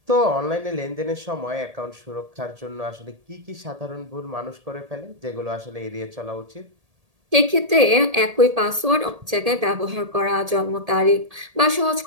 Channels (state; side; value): late; left; 1.8 ms